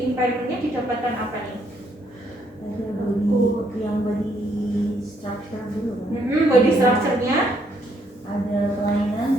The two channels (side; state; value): both; normal; correlation 0.71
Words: Impairmentnya didapatkan apa nih? Yang body structure dulu kan? Body structure-nya ada